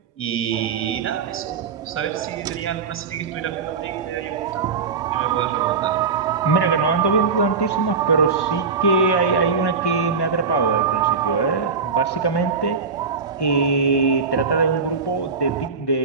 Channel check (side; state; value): left; quieter; 5.2 dB